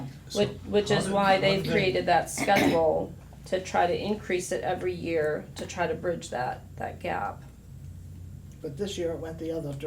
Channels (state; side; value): identical; both; correlation 1.00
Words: So Which is how why did- they've created that schedule to try to increase it every year to try to bridge that gap, But this year it went the other